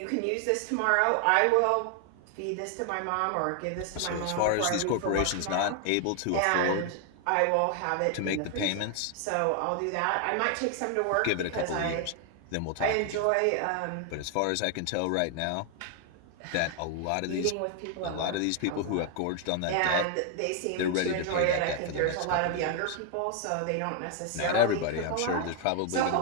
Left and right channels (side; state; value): both; different; correlation 0.00